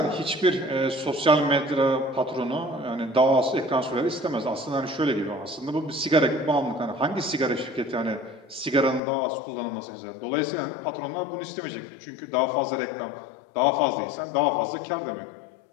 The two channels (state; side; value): drops out; right; at 9.0 s